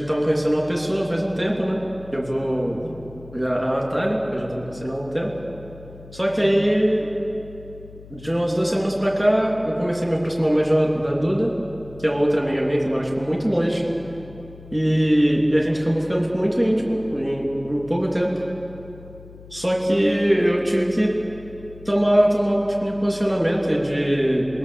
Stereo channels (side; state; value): left; noise; hum, 19 dB below the sound